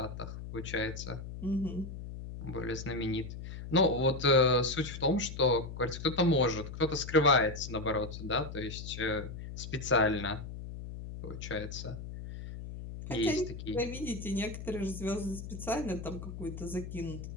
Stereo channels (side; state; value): left; noise; hum, 9 dB below the sound